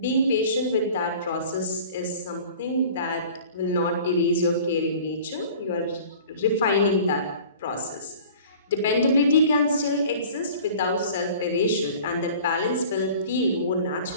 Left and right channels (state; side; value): inverted; both; correlation -0.45